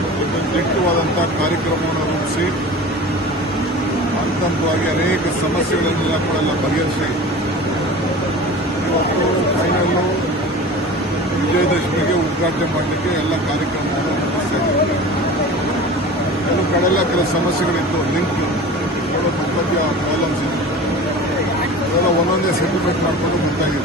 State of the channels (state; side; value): normal; both; correlation 0.36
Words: ಒಂದು ದಿಟ್ಟವಾದಂಥ ಕಾರ್ಯಕ್ರಮವನ್ನು ರೂಪಿಸಿ ಹಂತವಾಗಿ ಅನೇಕ ಸಮಸ್ಯೆಗಳನ್ನೆಲ್ಲ ಕೂಡ ಬಗೆಹರಿಸಿ ಇವತ್ತು ಫೈನಲ್ಲು ವಿಜಯದಶಮಿಗೆ ಉದ್ಘಾಟನೆ ಮಾಡಲಿಕ್ಕೆ ಎಲ್ಲ ಕಾರ್ಯಕ್ರಮವನ್ನು ನಡೆಸ್ತಾ ಇದ್ದೀವಿ. ಕೆಲವು ಕಡೆಲ್ಲ ಕೆಲವು ಸಮಸ್ಯೆಗಳಿತ್ತು, ಲಿಂಕ್ ಮಧ್ಯ ಪ್ರಾಬ್ಲಮ್ಸ್ ಇತ್ತು, ಅದೆಲ್ಲ ಒಂದೊಂದೇ ಸೆಟಲ್ಮೆಂಟ್ ಮಾಡಿಕೊಂಡು